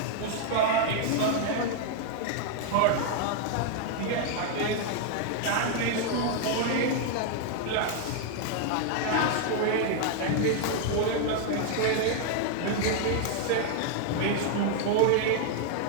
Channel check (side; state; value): both; different; correlation 0.00